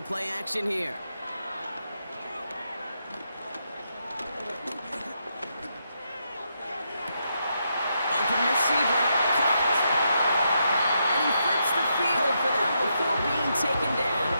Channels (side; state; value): both; inverted; correlation -0.81